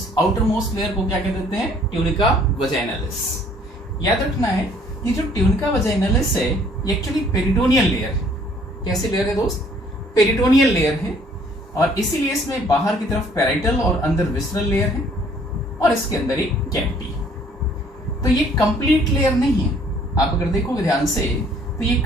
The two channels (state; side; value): normal; both; correlation 0.59